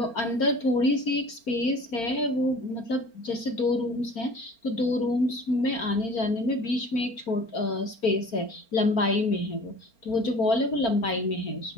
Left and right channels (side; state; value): right; late; 4.4 ms